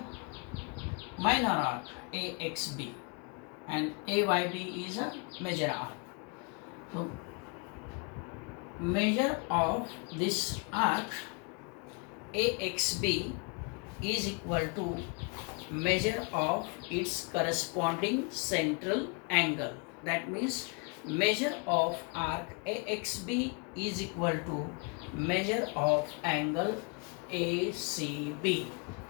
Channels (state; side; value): quieter; right; 33.7 dB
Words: minor arc AXB and AYB is a major arc. So measure of this arc AXB is equal to measure of its corresponding central angle. That means measure of arc AXB is equal to measure of angle ACB.